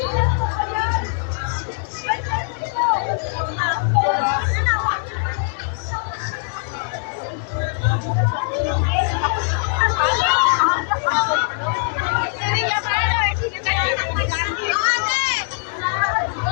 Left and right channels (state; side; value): silent; right; 61 dB below the other